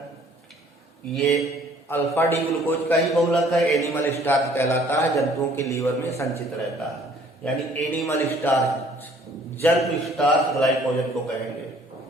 ये अल्फा डी ग्लूकोज का ही बहुलक है। एनिमल स्टार्च कहलाता है, जंतुओं के लीवर में संचित रहता है, यानी एनिमल स्टार्च, जंतु स्टार्च ग्लाइकोजन को कहेंगे।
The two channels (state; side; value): normal; both; correlation 0.57